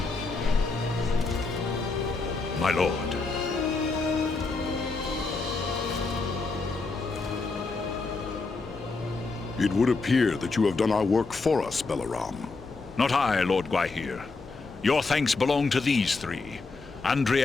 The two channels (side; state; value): right; quieter; 3.9 dB